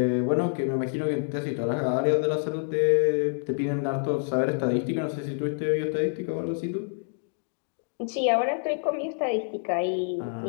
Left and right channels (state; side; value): silent; right; digital silence